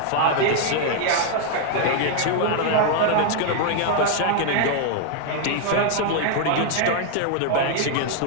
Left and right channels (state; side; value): different; both; correlation 0.00